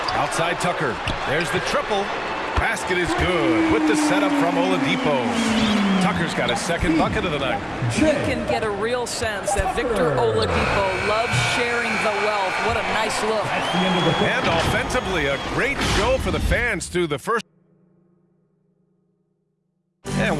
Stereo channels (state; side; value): identical; both; correlation 1.00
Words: Outside Tucker. There's the triple. Basket is good with the setup from Oladipo. Tucker's got his 2nd bucket of the night. You can get a real sense that Victor Oladipo loves sharing the wealth. What a nice look. And offensively, a great show for the fans through the first. And